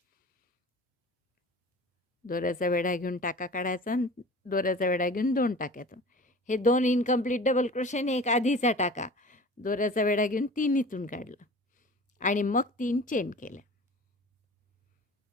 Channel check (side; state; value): both; normal; correlation 0.40